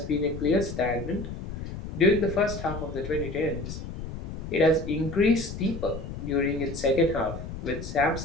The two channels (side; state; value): left; noise; rumble, 8 dB below the sound